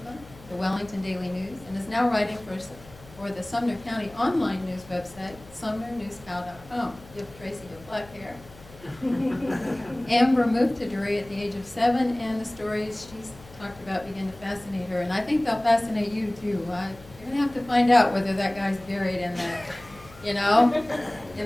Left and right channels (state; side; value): noise; left; hum, 21 dB below the sound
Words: the Wellington Daily News, and is now writing for the Sumner County online news website, sumnernewscow.com. Give Tracy your black hair. Amber moved to Drury at the age of 7, and the stories she's talked about begin to fascinate her, and I think they'll fascinate you too. You're going to have to find out whether that guy's buried in that,